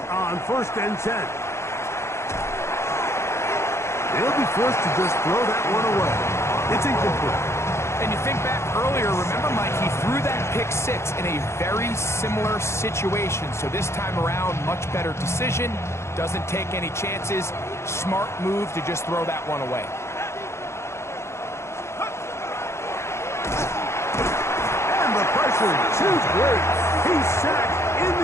on first and 10. They'll be forced to just throw that one away. It's incomplete. And you think back earlier, remember, Mike, he threw that pick six in a very similar situation. So this time around, much better decision. Doesn't take any chances. Smart move to just throw that one away. And the pressure too great. He's sacked in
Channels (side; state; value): right; late; 0.13 ms